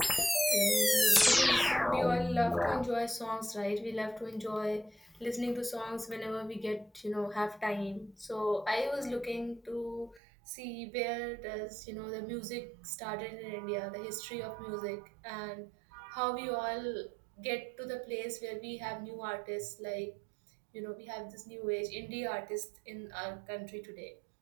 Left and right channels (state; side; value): drops out; left; at 10.2 s